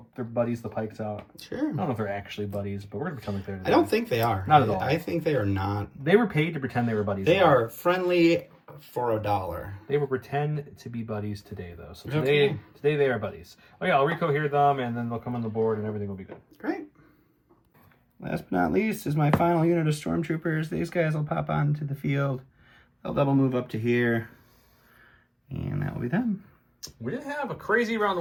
their buddies, the Pikes, out. Sure. I don't know if they're actually buddies, but we're gonna pretend like they're. I don't think they are. Not at all. I think they are not. They were paid to pretend they were buddies. They are friendly for $1. They will pretend to be buddies today, though. So today they are buddies. Oh yeah, I'll recohere them, and then they'll come on the board, and everything will be good. Great. Last but not least is my final unit of Stormtroopers. These guys will pop onto the field. They'll double move up to here, and that will be them. We didn't have a crazy round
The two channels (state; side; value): identical; both; correlation 1.00